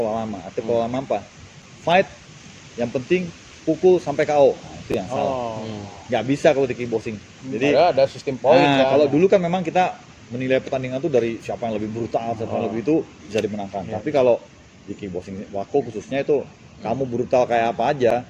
lama. Artinya pola lama apa? Fight yang penting pukul sampai KO. Nah, itu yang salah. Oh. Nggak bisa kalau di kickboxing. Jadi Ada sistem poin kan. kalau dulu kan memang kita menilai pertandingan tuh dari siapa yang lebih brutal, siapa yang lebih itu bisa dimenangkan. Iya. Tapi kalau di kickboxing Wako khususnya itu kamu brutal kayak apa aja,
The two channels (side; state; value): both; identical; correlation 1.00